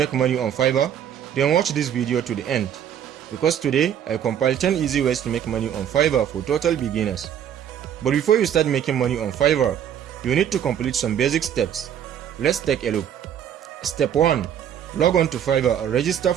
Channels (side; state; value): left; quieter; 9.5 dB